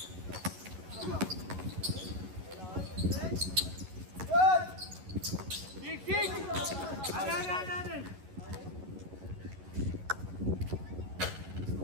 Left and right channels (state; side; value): late; left; 11 ms